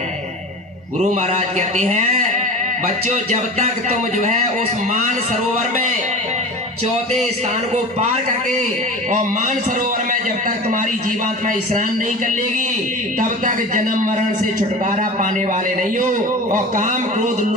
गुरु महाराज कहते हैं, बच्चों जब तक तुम जो है उस मान सरोवर में 4थे स्थान को पार करके और मान सरोवर में जब तक तुम्हारी जीवात्मा स्नान नहीं कर लेगी, तब तक जन्म मरण से छुटकारा पाने वाले नहीं हो और काम क्रोध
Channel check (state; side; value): normal; both; correlation 0.34